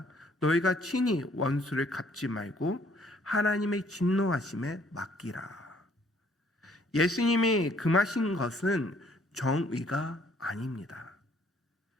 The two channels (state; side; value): normal; both; correlation 0.62